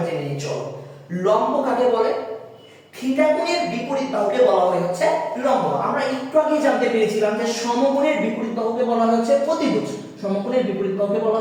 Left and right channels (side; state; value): both; identical; correlation 1.00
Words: জেনে নিই। চলো, লম্ব কাকে বলে? থিটা কোণের বিপরীত বাহুকে বলা হয় হচ্ছে লম্ব। আমরা একটু আগে জানতে পেরেছিলাম যে সমকোণের বিপরীত বাহুকে বলা হয় হচ্ছে অতিভুজ। সমকোণের বিপরীত বাহুকে বলা